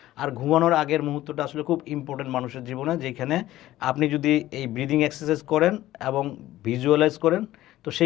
আর ঘুমানোর আগের মুহূর্তটা আসলে খুব ইম্পর্টেন্ট মানুষের জীবনে, যেখানে আপনি যদি এই ব্রিদিং এক্সারসাইজ করেন এবং ভিজুয়ালাইজ করেন, তো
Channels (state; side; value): quieter; right; 15.0 dB